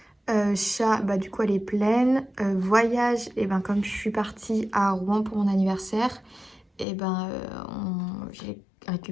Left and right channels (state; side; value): drops out; right; at 6.9 s